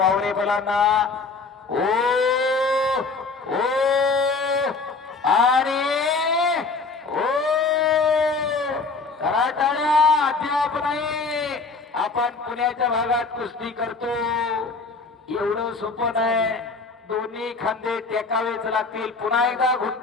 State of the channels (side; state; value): right; quieter; 4.2 dB